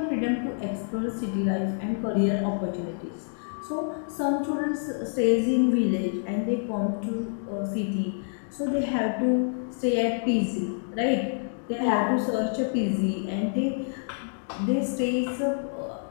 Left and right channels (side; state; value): right; silent; digital silence